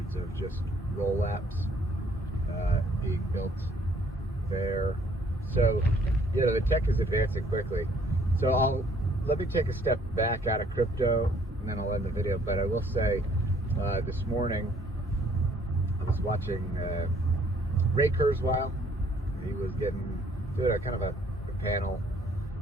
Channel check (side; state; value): both; normal; correlation 0.62